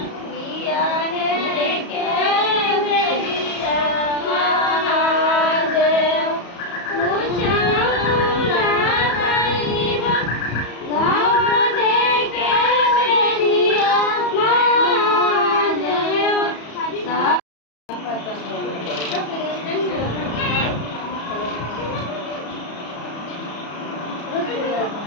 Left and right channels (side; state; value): right; late; 34 ms